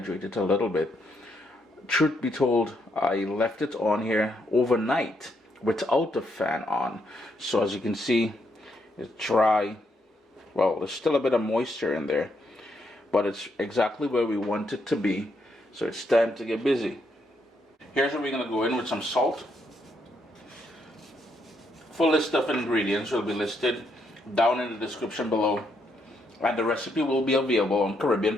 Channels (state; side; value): normal; both; correlation 0.77